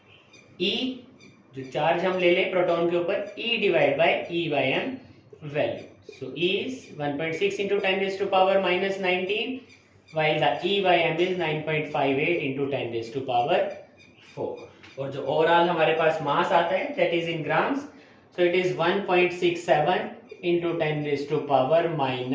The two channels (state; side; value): identical; both; correlation 1.00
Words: E, जो चार्ज हम ले ले प्रोटॉन के ऊपर, E divide by E/m value. So E is 1.6 into 10⁻⁻19 while the E/m is 9.58 into 10⁴ और जो ओवरऑल हमारे पास मास आता है that is in grams, so it is 1.67 into